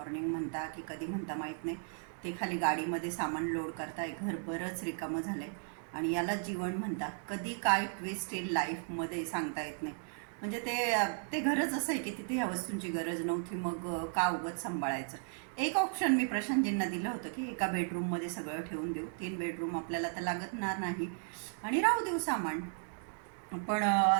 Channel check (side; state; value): left; silent; 54 dB below the other